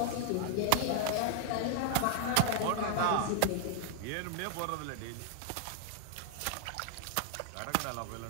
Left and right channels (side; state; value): both; different; correlation 0.00